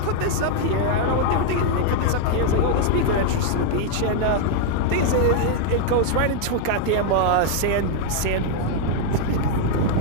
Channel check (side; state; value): both; different; correlation 0.00